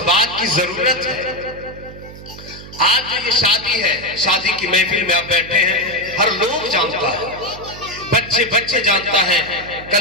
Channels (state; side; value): noise; right; hum, 15 dB below the sound